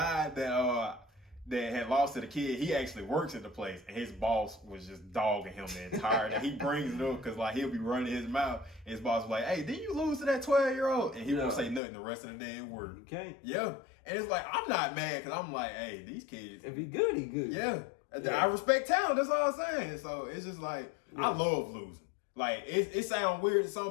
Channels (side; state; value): right; drops out; at 11.8 s